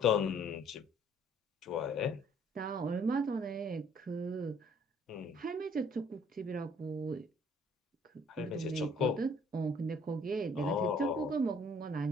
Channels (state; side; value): normal; both; correlation 0.59